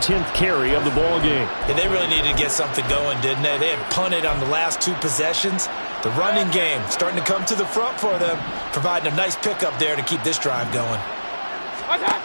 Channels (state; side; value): inverted; both; correlation -1.00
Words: carry of the ball game. And they really needed to get something going, didn't they? They had punted on the last 2 possessions. The running game starting to come to the front for them, providing a nice pickup there to keep this drive going.